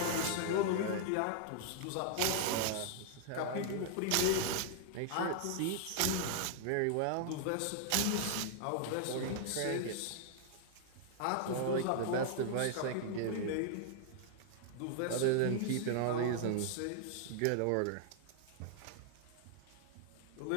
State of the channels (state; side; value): different; both; correlation 0.00